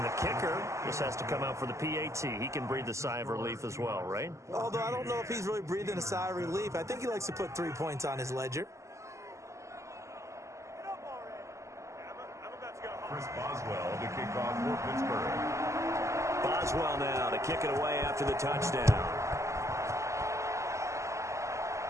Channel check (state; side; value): late; left; 0.14 ms